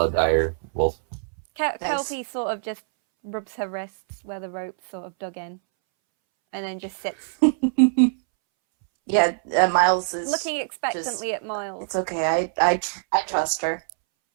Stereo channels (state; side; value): silent; left; 63 dB below the other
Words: a dire wolf. Kelpie sort of just rubs her wrists where the rope's sort of dug in, and then just sits, Yeah, Miles is looking expectantly at Miles. It's okay. I trust her.